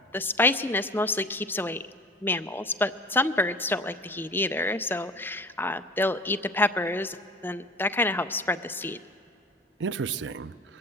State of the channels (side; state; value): both; normal; correlation 0.40